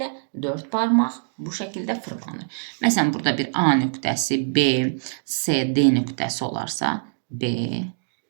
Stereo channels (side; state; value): left; silent; digital silence